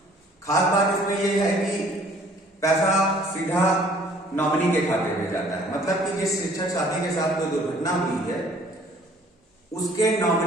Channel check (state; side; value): normal; both; correlation 0.57